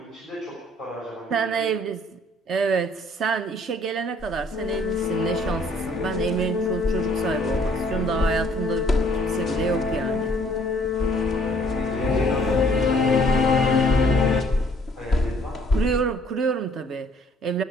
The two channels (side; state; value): both; normal; correlation 0.61